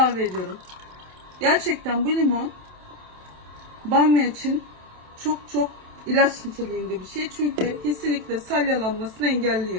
ediyorum. Gerçekten bu limon bamya için çok ilaç niteliğinde bir şey. Çünkü kesinlikle salyalanmasını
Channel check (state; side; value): late; left; 27 ms